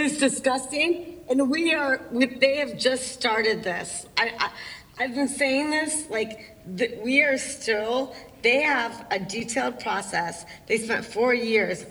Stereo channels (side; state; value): both; identical; correlation 1.00